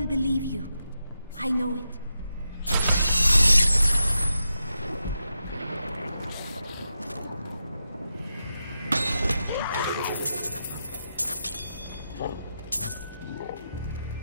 believe you. I know it.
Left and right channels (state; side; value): inverted; both; correlation -0.88